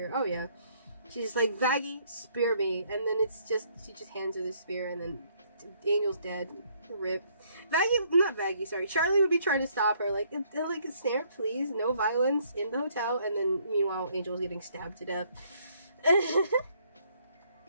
Oh yeah, she's like, Vaggie, spear me, and then it's just, she just hands her the spear, and then Angel's dead. Rip. Charlie would be trying to stop her, like, Snare, please, no violence in the hotel, and then meanwhile Angel's getting stabbed to death.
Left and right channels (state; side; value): inverted; both; correlation -0.66